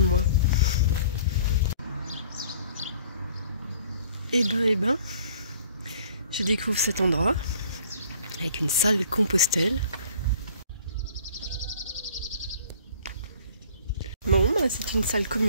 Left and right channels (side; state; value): both; inverted; correlation -0.52